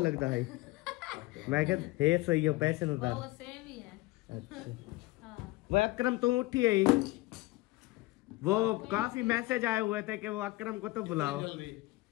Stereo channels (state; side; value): quieter; right; 20.3 dB